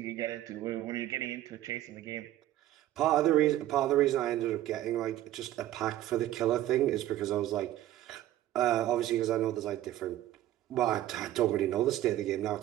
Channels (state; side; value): quieter; left; 13.7 dB